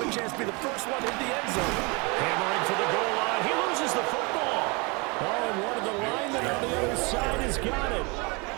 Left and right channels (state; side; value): quieter; left; 29.2 dB